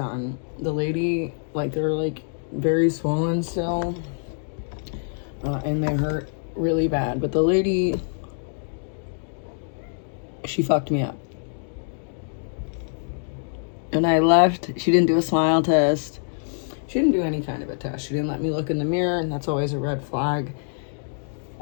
The lady, like, they're like very swollen still, and they hurt really bad. But the lady, she fucked me up. And I left. She didn't do a smile test. She didn't do any kind of a test. She didn't let me look in the mirror, and that's always a red flag.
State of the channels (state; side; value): silent; right; digital silence